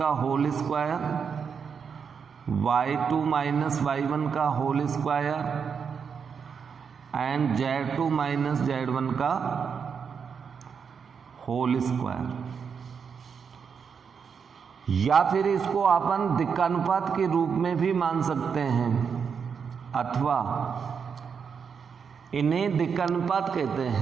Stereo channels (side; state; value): left; quieter; 6.4 dB